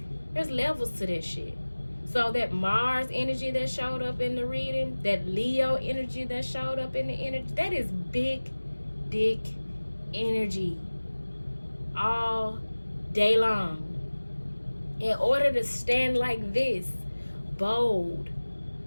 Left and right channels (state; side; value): inverted; both; correlation -1.00